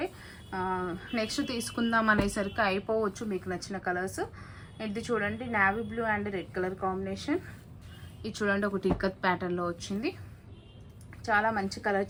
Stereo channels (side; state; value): both; identical; correlation 1.00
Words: నెక్స్ట్ తీసుకుందాం అనేసరికి అయిపోవచ్చు మీకు నచ్చిన కలర్స్. ఇది చూడండి navy blue and red colour combination. ఇది చూడండి ఒకటి ఇక్కత్ ప్యాటర్న్లో వచ్చింది. చాలా మంచి కలర్